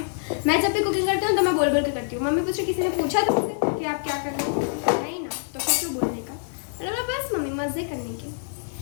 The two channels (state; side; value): silent; right; digital silence